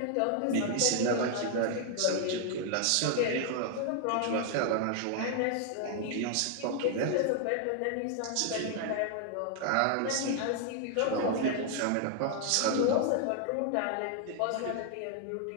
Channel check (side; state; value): both; different; correlation 0.00